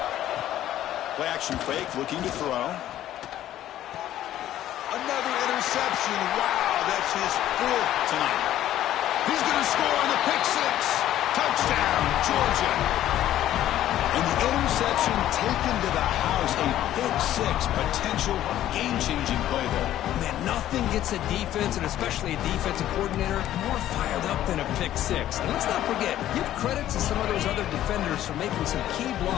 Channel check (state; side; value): quieter; right; 12.7 dB